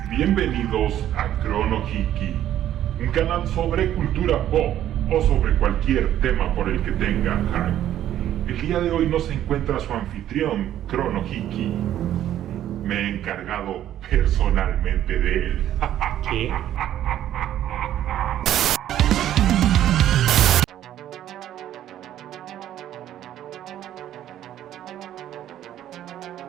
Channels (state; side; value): quieter; left; 11.8 dB